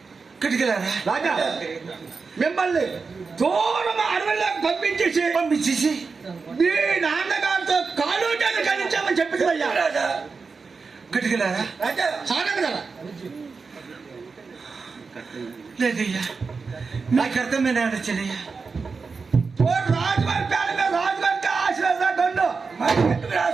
ఇక్కడికి రాదా రాజా మిమ్మల్ని దూరం అడవుల్లోకి పంపించేసి మీ నాన్నగారితో కాలు చేతులు కలిగించామని చెప్పింది అయ్యా. రాజా ఇక్కడికి రాదా రాజా సారంగదా లేదయ్యా నాకు అర్థమైన చెల్లయ్యా. రాజుగారి పేరు మీద రాజుగారికి ఆశీర్వాదండు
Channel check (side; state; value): left; quieter; 4.7 dB